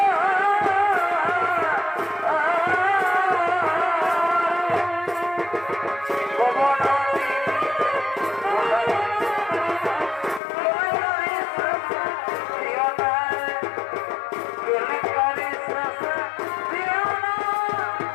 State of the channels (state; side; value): drops out; right; at 10.4 s